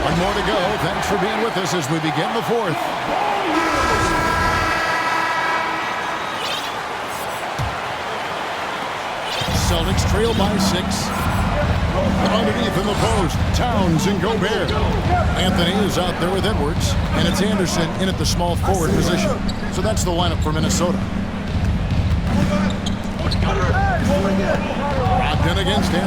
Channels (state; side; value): identical; both; correlation 1.00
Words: more to go. Thanks for being with us as we begin the fourth. Celtics trail by 6. Underneath in the post, Towns and Gobert. Anthony is out there with Edwards, and it's Anderson in at the small forward position. So that's the lineup for Minnesota. Brogdon against